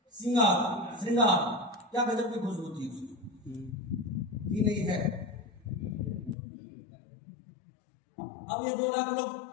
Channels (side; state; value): right; drops out; at 6.4 s